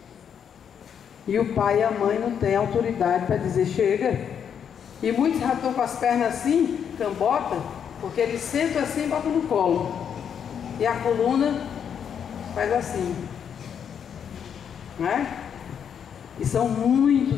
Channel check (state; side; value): quieter; right; 7.9 dB